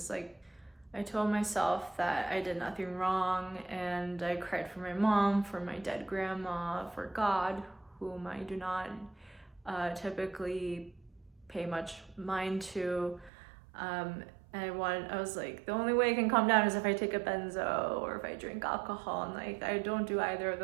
like I told myself that I did nothing wrong, and I cried for my mom, for my dead grandma, for God, whom I do not typically pay much mind to. And I was like, the only way I can calm down is if I take a benzo or if I drink alcohol, and like I don't do either of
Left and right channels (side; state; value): left; drops out; at 13.3 s